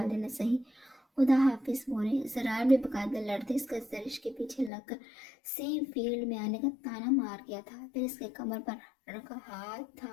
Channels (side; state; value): right; drops out; at 4.7 s